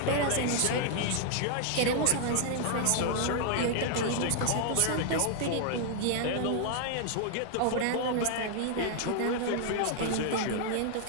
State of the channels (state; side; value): different; both; correlation 0.00